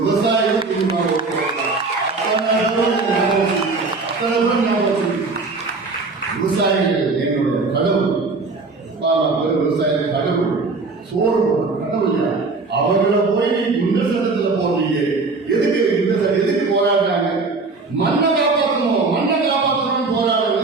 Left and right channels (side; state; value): left; quieter; 3.9 dB